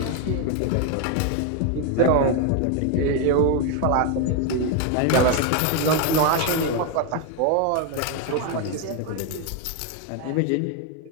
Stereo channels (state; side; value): different; both; correlation 0.01